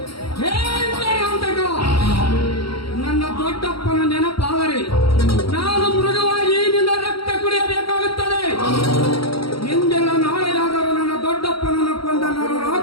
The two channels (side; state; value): right; late; 0.74 ms